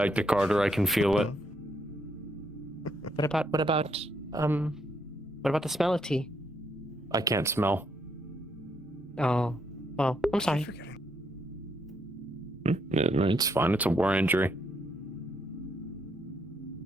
to Carter. I can feel it. What about the smell of tea? I can't smell. Oh, well, I'm sorry. It's fine. It's a war injury.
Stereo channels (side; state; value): both; normal; correlation 0.75